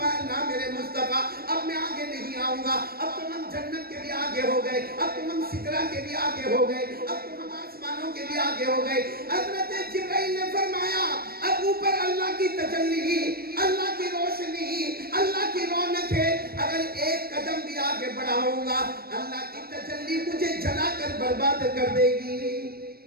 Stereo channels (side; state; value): left; late; 0.44 ms